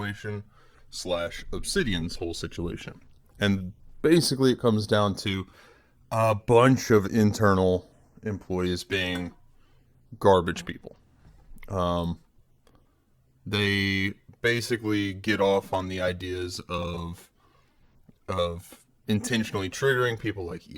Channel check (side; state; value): both; identical; correlation 1.00